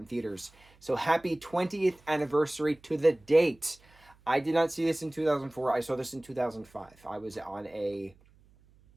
theaters. So happy 20th anniversary to the date. I did not see this in 2004. I saw this in 2005. I was on a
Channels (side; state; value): right; noise; hum, 29 dB below the sound